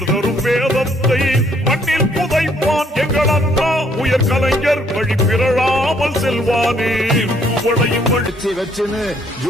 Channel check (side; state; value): both; normal; correlation 0.66